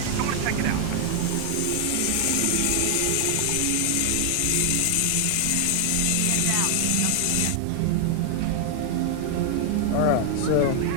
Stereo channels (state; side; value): different; both; correlation 0.00